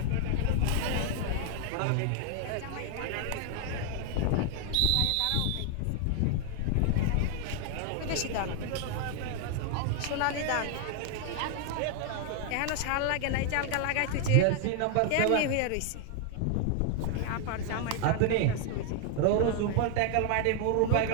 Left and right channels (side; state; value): both; different; correlation 0.00